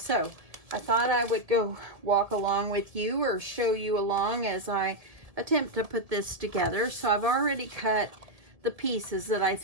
I thought I would go walk along with you or show you along as I attempt to put this together. So I've already cut the pieces that I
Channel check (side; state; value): left; late; 1.7 ms